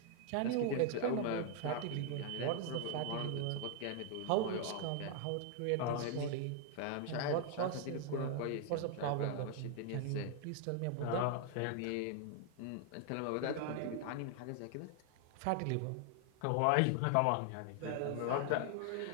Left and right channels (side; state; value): both; different; correlation 0.00